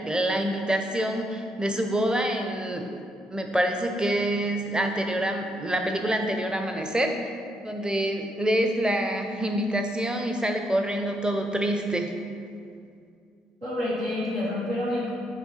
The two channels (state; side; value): normal; both; correlation 0.77